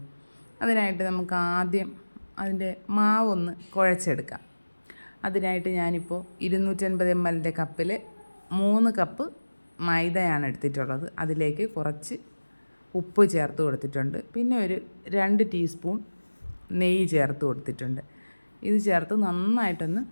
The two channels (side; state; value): both; inverted; correlation -1.00